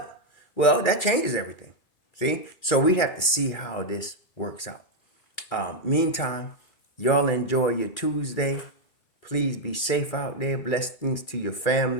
Well, that changes everything. See? So we have to see how this works out. Meantime, y'all enjoy your Tuesday. Please be safe out there. Blessings to your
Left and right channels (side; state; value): right; late; 2.3 ms